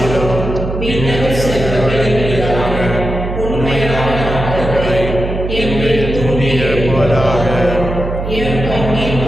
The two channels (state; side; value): noise; right; hum, 5 dB below the sound